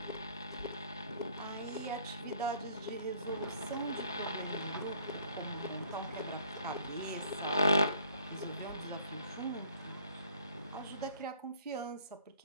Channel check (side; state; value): both; inverted; correlation -0.59